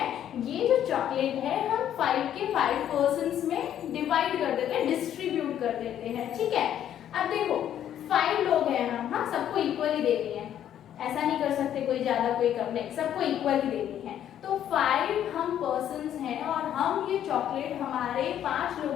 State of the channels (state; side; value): quieter; right; 10.5 dB